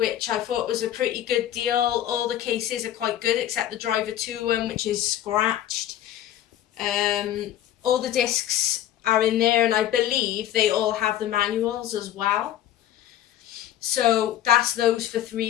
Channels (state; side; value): quieter; right; 12.0 dB